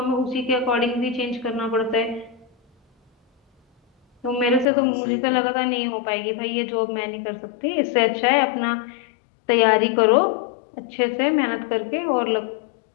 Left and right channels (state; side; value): drops out; right; at 4.7 s